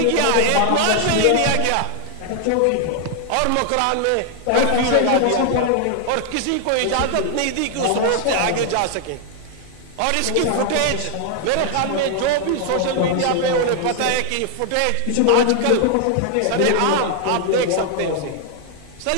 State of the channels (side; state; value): both; different; correlation 0.00